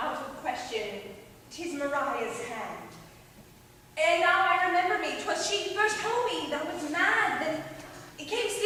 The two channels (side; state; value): both; identical; correlation 1.00